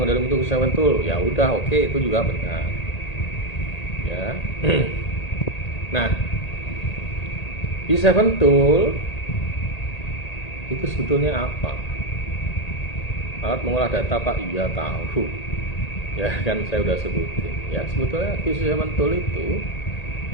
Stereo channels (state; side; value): late; right; 1.8 ms